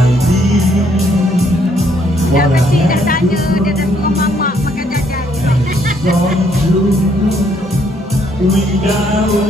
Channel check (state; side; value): normal; both; correlation 0.68